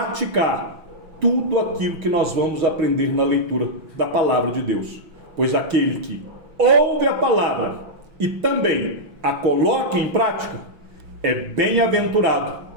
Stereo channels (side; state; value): left; late; 5.9 ms